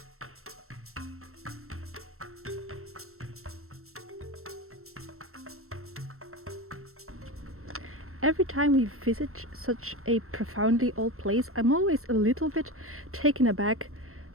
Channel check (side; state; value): left; late; 0.63 ms